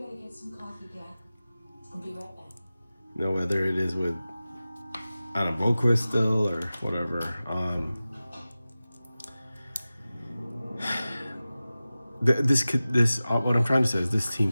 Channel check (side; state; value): both; inverted; correlation -0.96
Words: get some coffee, Dad. I'll be right back. you know, whether it is with Anna Boquist still or whatever. What I'm trying to say is this